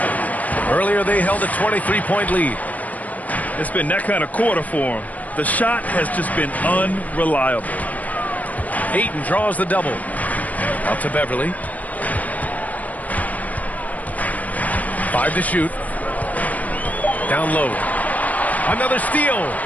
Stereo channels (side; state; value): right; late; 0.074 ms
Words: Earlier they held a 23-point lead. It's been that kind of quarter for him. The shot has just been unreliable. Ayton draws the double. Out to Beverly. 5 to shoot. Down low. Another steal.